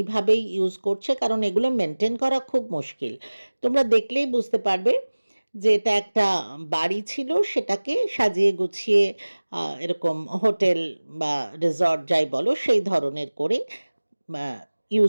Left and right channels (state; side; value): inverted; both; correlation -1.00